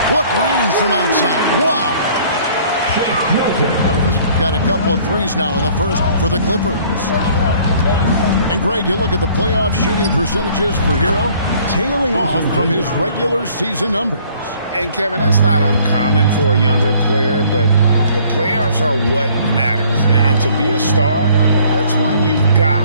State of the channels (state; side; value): inverted; both; correlation -0.57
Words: What range from outside. Wow. Milton's got a couple of threes now in the first for the Clippers. And Greg, you look at the playoff shooting percentages for Hero, tailing off from his regular season numbers. And Kevin, that's not uncommon for a younger player, but the playoffs are what matters. And to be a star, that's when you've got